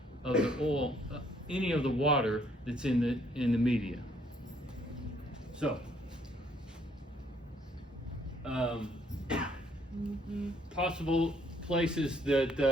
of the oil, any of the water that's in the media. So, possible places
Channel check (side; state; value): both; normal; correlation 0.66